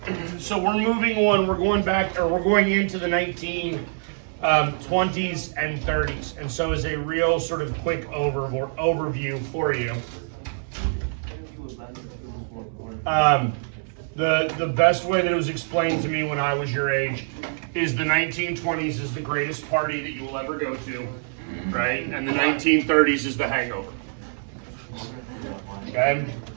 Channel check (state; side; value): silent; left; digital silence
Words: so we're moving on, we're going back, or we're going into the 1920s and 30s. And so as a real sort of quick overview for you, the best way that it was explained to me when I was your age is the 1920s is the greatest party that you will ever go to, right? And the 1930s is the hangover. Okay?